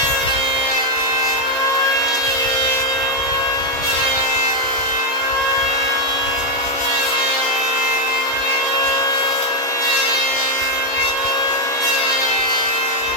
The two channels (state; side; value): normal; both; correlation 0.03